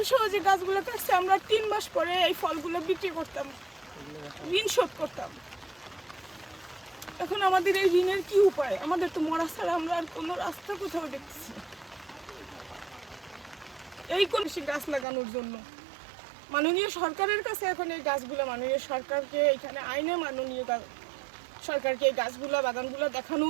যে গাছগুলো কাটছে, আমরা 3 মাস পরে এই ফলগুলো বিক্রি করতাম, ঋণ শোধ করতাম। এখন আমাদের এই ঋণের কি উপায়? আমাদের তো মরা ছাড়া আমরা আর কোনো রাস্তা কোথাও দেখতেছি না। এই কোন গাছ লাগানোর জন্য মাননীয় সরকারের কাছে এখন এই গাছগুলো, মাননীয় সরকারকে এখানে আইনে মাননীয় সরকারকে এই গাছগুলো, বাগানগুলো দেখানো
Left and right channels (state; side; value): drops out; left; at 15.1 s